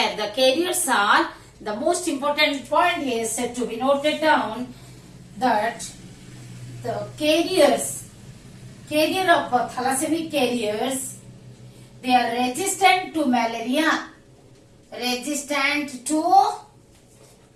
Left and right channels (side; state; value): both; identical; correlation 1.00